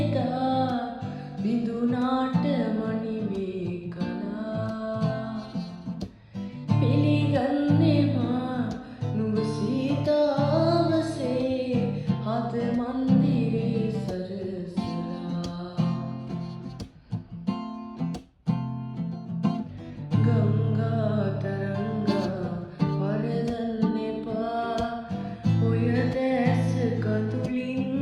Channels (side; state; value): both; identical; correlation 1.00